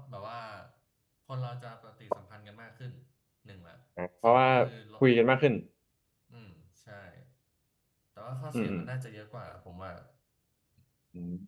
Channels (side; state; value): both; identical; correlation 1.00